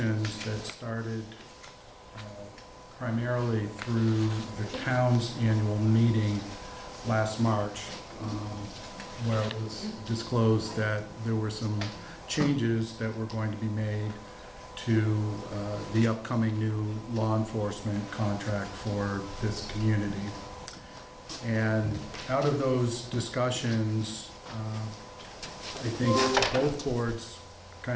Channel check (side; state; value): both; identical; correlation 1.00